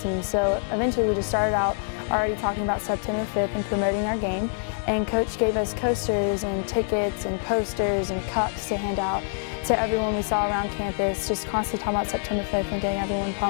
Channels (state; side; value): silent; right; digital silence